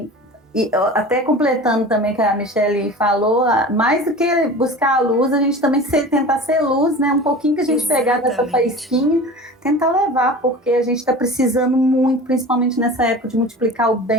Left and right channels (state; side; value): normal; both; correlation 0.37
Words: e até completando também que a Michelle falou, mais do que buscar a luz, a gente também tentar ser luz, né? Um pouquinho que a gente pegar dessa faísquinha, tentar levar, porque a gente está precisando muito, principalmente nessa época, de multiplicar o